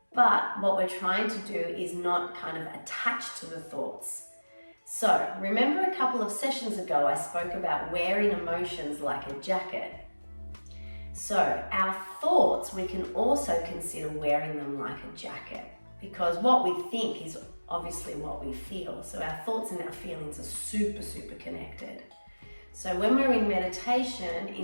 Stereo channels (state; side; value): inverted; both; correlation -1.00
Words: But what we're trying to do is not kind of attach to the thoughts. So remember a couple of sessions ago, I spoke about wearing emotions like a jacket. So our thoughts, we can also consider wearing them like a jacket, because what we think is obviously what we feel. So our thoughts and our feelings are super, super connected. So when we're in meditation,